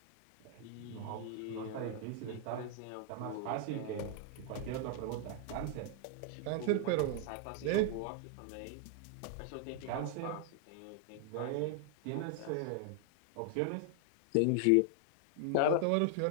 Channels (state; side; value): different; both; correlation 0.00